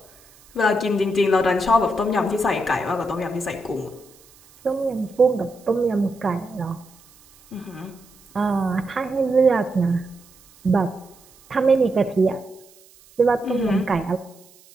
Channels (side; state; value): right; noise; hiss, 27 dB below the sound